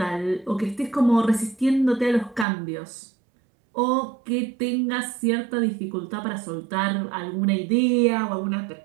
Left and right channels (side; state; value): left; drops out; at 2.5 s